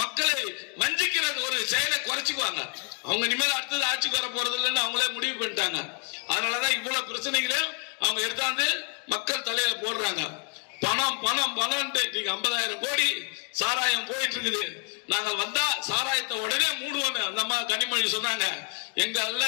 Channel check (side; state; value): right; quieter; 35.8 dB